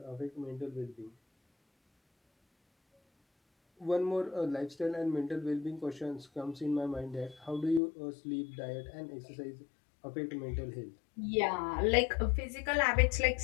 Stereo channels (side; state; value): right; drops out; at 7.8 s